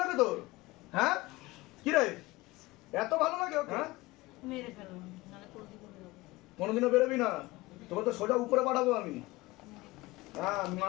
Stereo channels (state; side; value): quieter; right; 20.8 dB